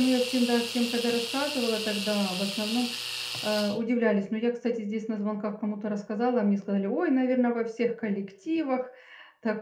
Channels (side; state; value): both; identical; correlation 1.00